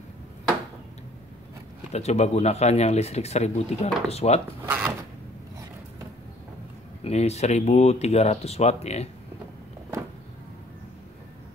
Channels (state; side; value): normal; both; correlation 0.57